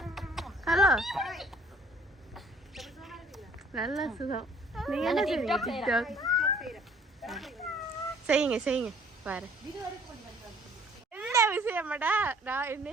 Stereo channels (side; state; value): both; normal; correlation 0.57